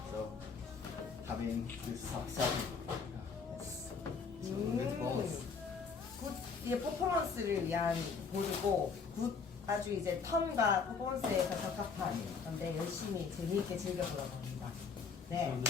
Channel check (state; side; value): quieter; right; 5.4 dB